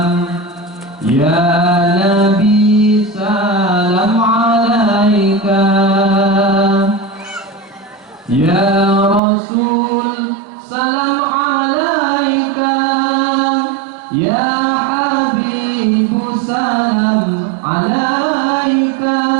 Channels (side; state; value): left; drops out; at 9.2 s